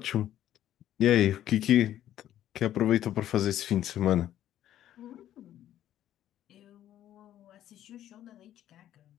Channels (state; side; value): quieter; right; 12.0 dB